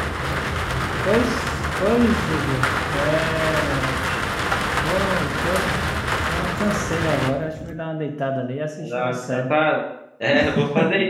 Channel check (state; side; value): identical; both; correlation 1.00